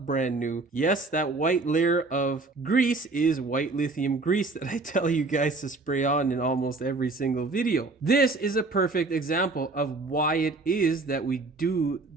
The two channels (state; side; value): quieter; left; 3.5 dB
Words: new. Yes, that white layer of grease is white lithium grease that I tell you guys to spray on in almost every single video. This is a perfect example of why it is that we do